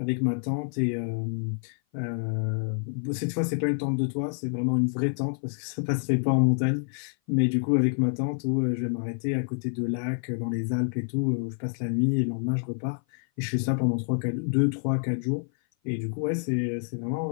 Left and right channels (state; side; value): silent; right; 56 dB below the other